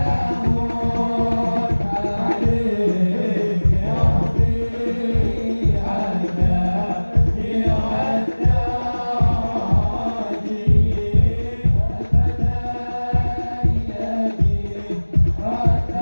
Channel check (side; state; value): both; inverted; correlation -1.00